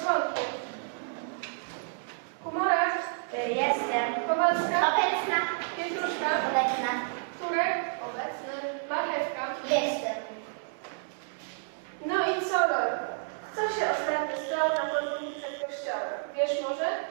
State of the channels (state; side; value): silent; left; digital silence